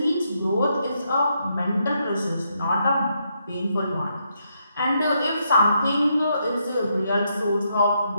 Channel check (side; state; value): both; inverted; correlation -0.78